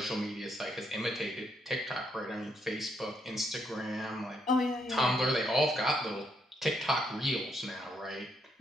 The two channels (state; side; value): normal; both; correlation 0.76